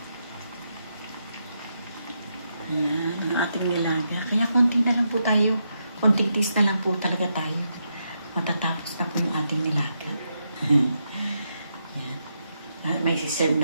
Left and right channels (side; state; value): both; inverted; correlation -0.83